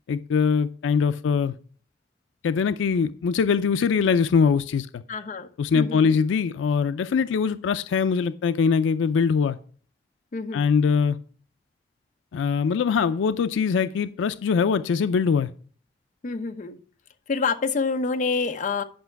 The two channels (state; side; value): quieter; right; 5.4 dB